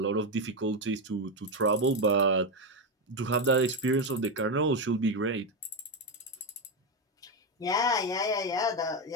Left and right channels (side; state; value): both; normal; correlation 0.09